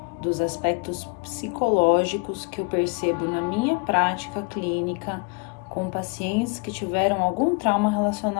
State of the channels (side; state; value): right; quieter; 31.8 dB